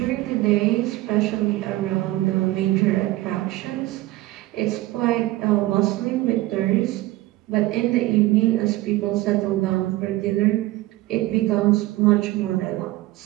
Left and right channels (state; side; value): quieter; left; 17.8 dB